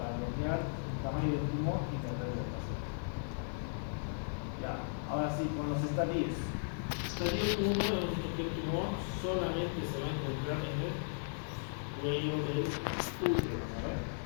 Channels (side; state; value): right; silent; 53 dB below the other